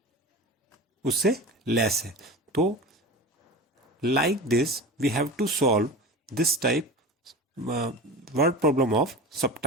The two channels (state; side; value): normal; both; correlation 0.31